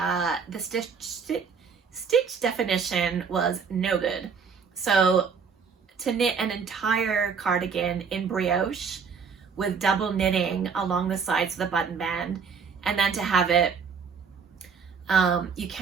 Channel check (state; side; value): quieter; left; 5.9 dB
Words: the stitch definition was no good. So to knit an entire cardigan in brioche with double knitting along the sides of the button band, and then to have it you